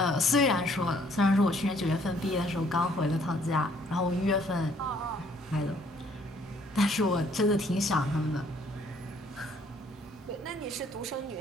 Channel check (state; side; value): normal; both; correlation 0.62